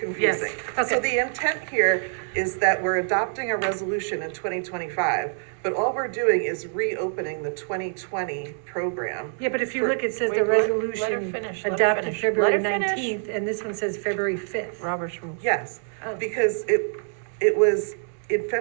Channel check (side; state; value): left; silent; 57 dB below the other